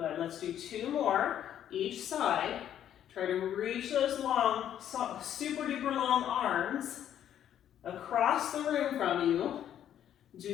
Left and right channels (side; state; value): right; quieter; 10.4 dB